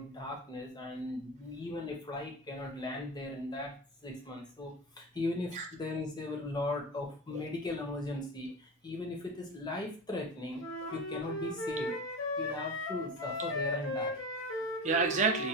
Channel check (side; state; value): both; normal; correlation 0.26